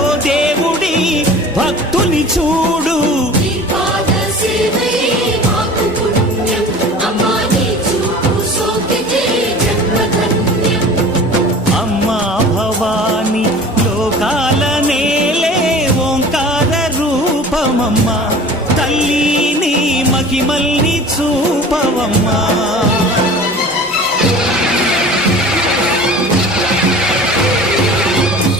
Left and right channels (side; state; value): both; normal; correlation 0.41